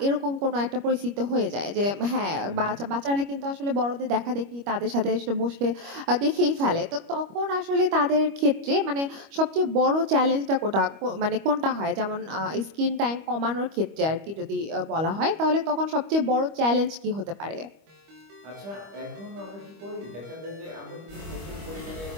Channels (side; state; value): left; late; 25 ms